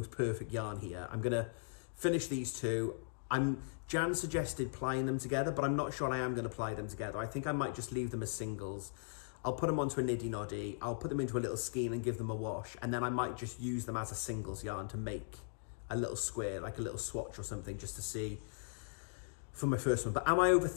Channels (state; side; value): silent; right; digital silence